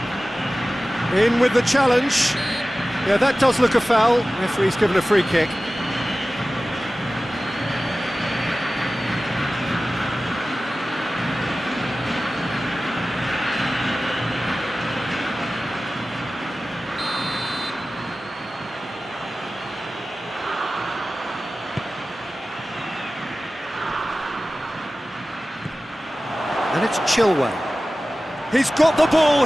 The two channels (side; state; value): both; normal; correlation 0.96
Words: In with the challenge. Yeah, that does look a foul. Referee's given a free kick. It's Chilwell. He's got the ball,